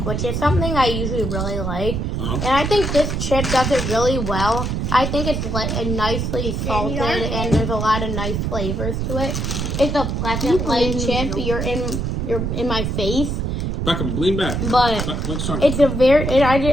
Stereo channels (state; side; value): noise; right; rumble, 1 dB below the sound